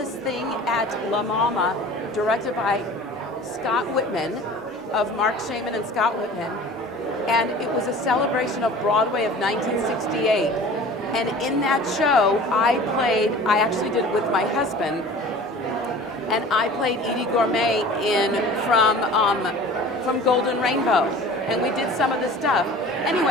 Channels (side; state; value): both; normal; correlation 0.42